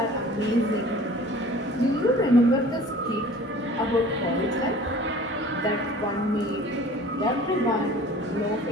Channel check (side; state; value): both; normal; correlation 0.46